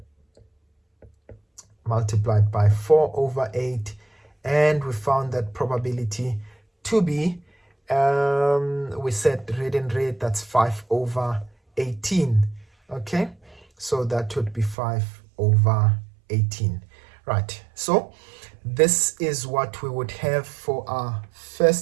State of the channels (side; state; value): left; drops out; at 14.8 s